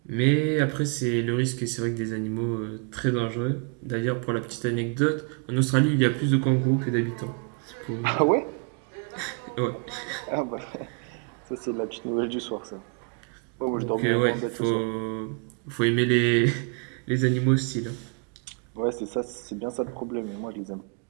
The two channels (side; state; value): left; quieter; 36.7 dB